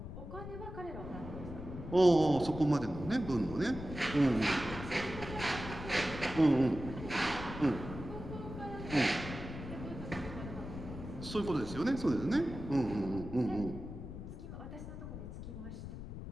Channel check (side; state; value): left; noise; rumble, 9 dB below the sound